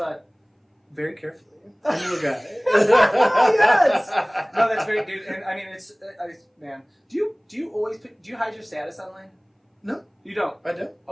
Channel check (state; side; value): identical; both; correlation 1.00